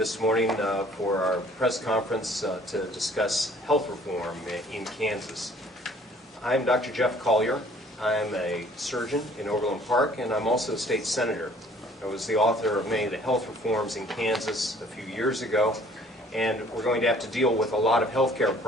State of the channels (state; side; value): normal; both; correlation 0.56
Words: morning for our press conference to discuss health reform in Kansas. I'm Dr. Jeff Colyer. I'm a surgeon in Overland Park, and I'm also a state senator. I was the author of many of the health reforms in Kansas a few years ago, and we're going to have to deal with a lot of health care